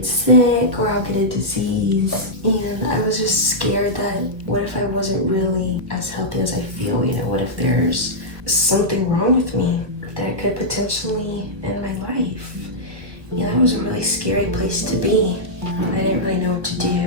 sick or I'll get a disease. And I was just scared that what if I wasn't really as healthy as I feel, you know, what if there's something wrong with me that could potentially end my life? You know, that was a really scary place to be. I didn't really know what to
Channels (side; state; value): left; late; 1.3 ms